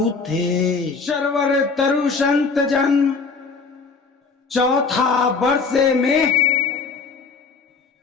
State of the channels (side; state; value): right; quieter; 4.7 dB